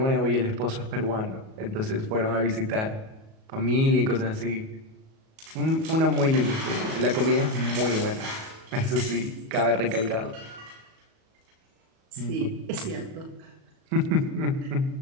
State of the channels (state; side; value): late; left; 37 ms